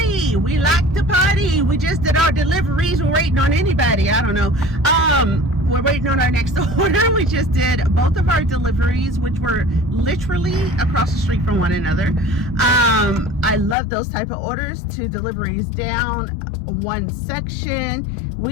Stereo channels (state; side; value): drops out; right; at 13.8 s